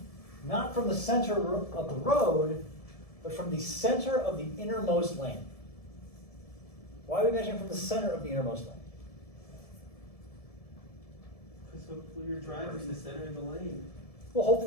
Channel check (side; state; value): right; late; 1.7 ms